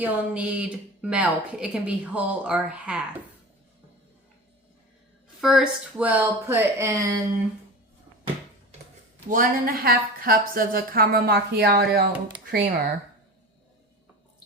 need milk. It can be whole or half. First, we'll put in 1.5 cups of the caramel macchiato creamer.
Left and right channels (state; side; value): normal; both; correlation 0.31